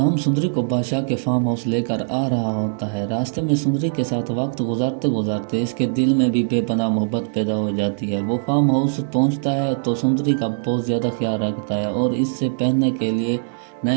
सुंदरी को बादशाह के फार्म हाउस लेकर आ रहा होता है। रास्ते में सुंदरी के साथ वक्त गुजारते गुजारते इसके दिल में भी बेपनाह मोहब्बत पैदा हो जाती है। वो फार्म हाउस पहुंचता है तो सुंदरी का बहुत ज़्यादा ख्याल रखता है और इससे पहनने के लिए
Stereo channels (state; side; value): silent; left; digital silence